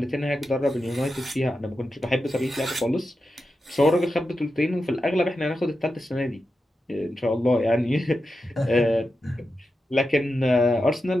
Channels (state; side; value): normal; both; correlation 0.90